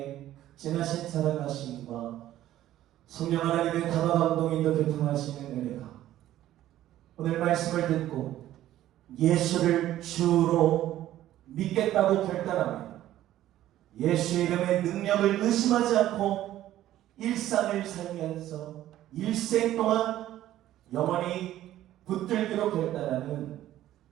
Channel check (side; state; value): left; quieter; 13.4 dB